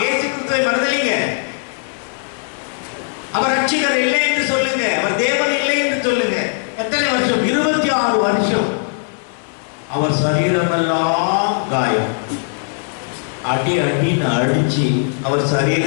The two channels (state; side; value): silent; right; digital silence